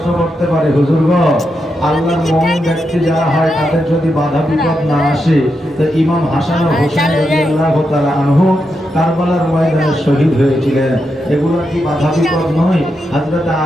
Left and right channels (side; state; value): both; normal; correlation 0.85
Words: করতে পারি, হুজুর গো, আল্লাহর মুমিন ব্যক্তি যারা হয় তাদের যদি বাধা বিপদ না আসে, তো ইমাম হাসান ও হোসেন রাদিয়াল্লাহু তাআলা আনহু কারবালার ময়দানে শহীদ হয়েছিলেন, এগুলো কি বাধা বিপদ নয়? হযরত